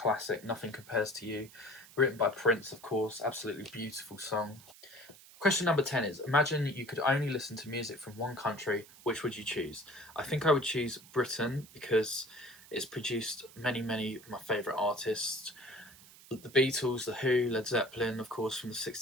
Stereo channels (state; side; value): noise; right; hiss, 21 dB below the sound